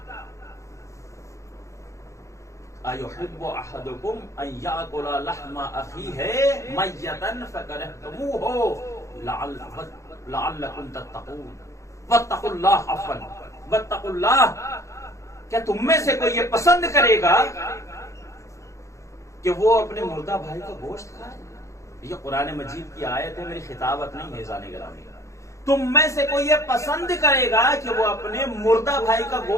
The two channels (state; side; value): late; right; 0.15 ms